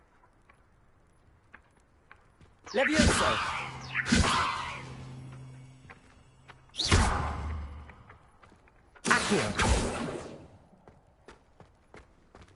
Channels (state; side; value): identical; both; correlation 1.00